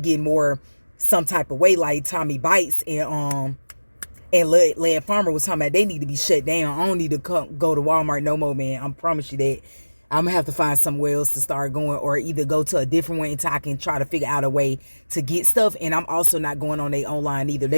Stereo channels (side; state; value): both; inverted; correlation -1.00